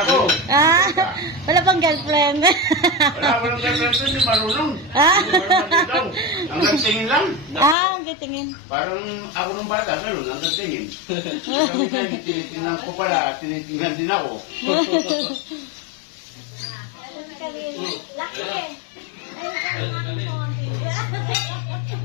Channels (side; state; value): right; drops out; at 7.8 s